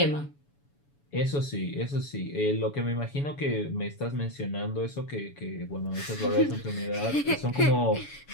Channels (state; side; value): late; right; 7.0 ms